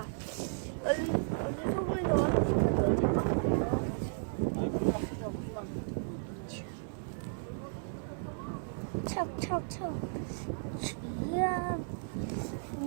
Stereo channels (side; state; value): left; silent; 55 dB below the other